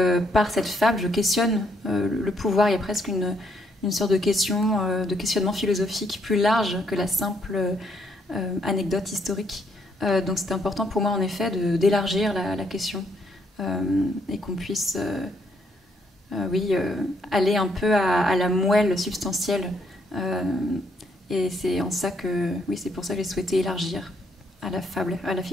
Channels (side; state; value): both; normal; correlation 0.72